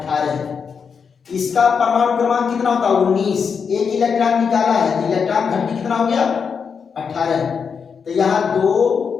है। इसका परमाणु क्रमांक कितना होता है 19, एक इलेक्ट्रॉन निकाला है तो इलेक्ट्रॉन घनत्व कितना हो गया 18, तो यहां 2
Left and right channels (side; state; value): right; quieter; 6.2 dB